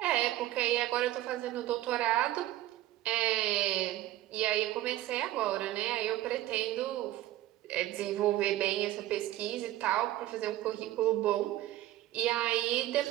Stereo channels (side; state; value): left; quieter; 15.1 dB